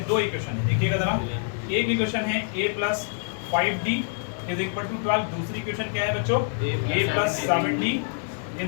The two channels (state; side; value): silent; right; digital silence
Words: 2 इक्वेशन है। देखिएगा जरा, एक इक्वेशन है A plus 5D is equal to 12। दूसरी इक्वेशन क्या है बच्चों? A plus 7D